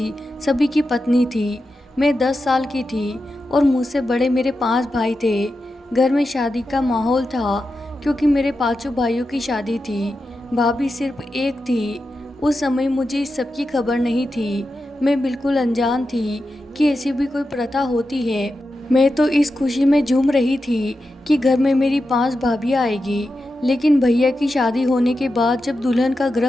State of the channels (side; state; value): both; normal; correlation 0.90